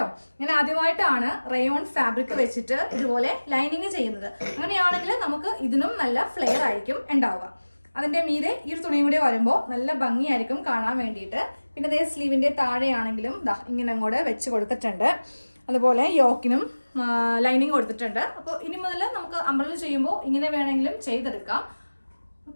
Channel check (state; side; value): inverted; both; correlation -1.00